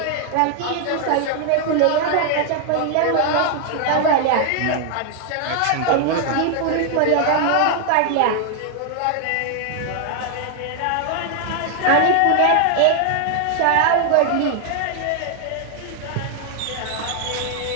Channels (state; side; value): different; both; correlation 0.00